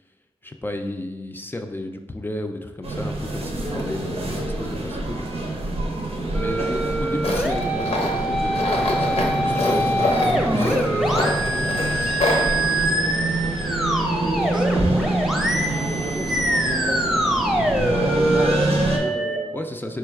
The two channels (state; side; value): normal; both; correlation 0.76